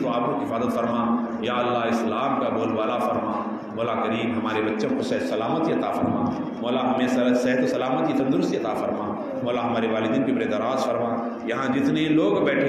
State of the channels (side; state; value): both; identical; correlation 1.00